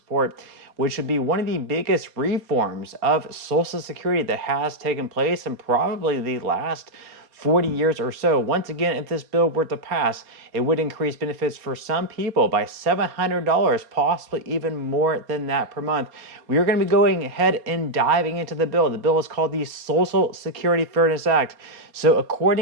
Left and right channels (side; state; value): left; late; 4.2 ms